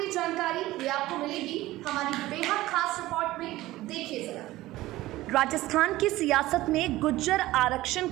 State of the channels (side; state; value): left; quieter; 17.1 dB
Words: जानकारी, ये आपको मिलेगी हमारी बेहद खास रिपोर्ट में। देखिए जरा। राजस्थान की सियासत में गुज्जर आरक्षण